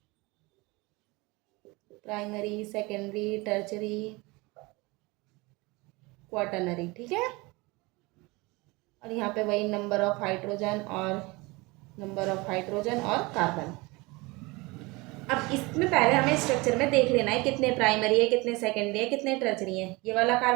प्राइमरी, सेकेंडरी, टर्चरी, क्वाटरनरी। ठीक है, और यहाँ पे वही नंबर ऑफ हाइड्रोजन और कार्बन। अब इसमें पहले हमें स्ट्रक्चर में देख लेना है कितने प्राइमरी है, कितने सेकेंडरी है, कितने टर्चरी है। ये वाला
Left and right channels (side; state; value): left; quieter; 24.2 dB